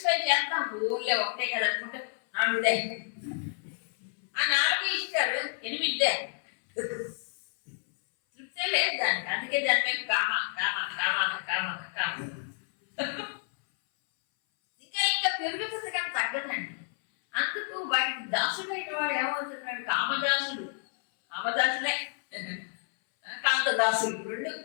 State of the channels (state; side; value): silent; right; 58 dB below the other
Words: చేస్తాం, ఊళ్ళో ఒకటే కదా అనుకుంటే 4 ఆ 4 ఇస్తారు, 8 తృప్తే లేదు దానికి. అందుకే దాని మీద కామ కామ కామ కామ కామ ఇంకా ఇంకా పెరుగుతుంది కానీ తగ్గదండి. అందుకు వాటికి దాసుడైన వాడు ఏమవుతున్నాడు, కామదాసుడు. కామదాసులే కాంతదాసులు, 2